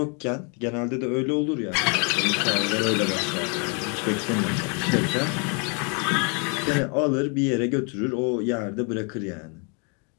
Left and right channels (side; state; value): right; quieter; 35.9 dB